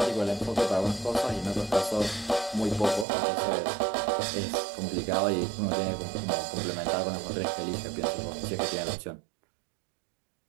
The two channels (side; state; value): left; drops out; at 3.1 s